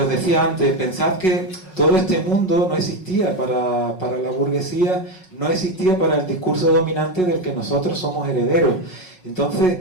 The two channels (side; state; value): right; late; 5.4 ms